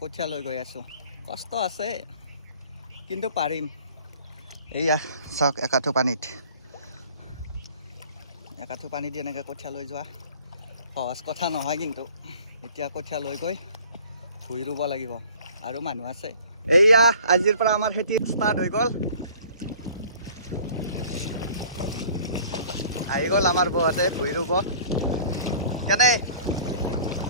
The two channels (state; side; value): inverted; both; correlation -0.50